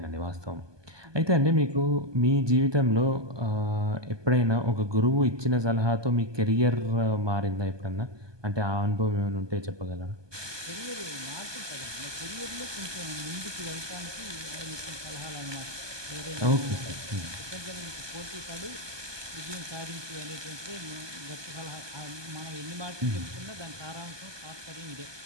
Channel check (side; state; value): left; late; 1.2 ms